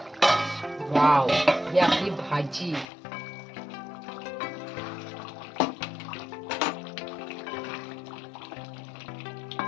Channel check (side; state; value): right; drops out; at 2.9 s